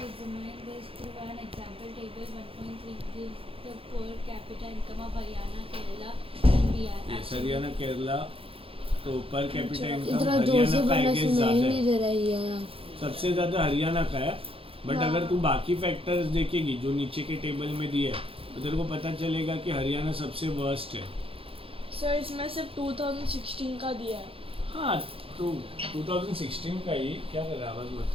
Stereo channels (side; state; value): left; late; 0.27 ms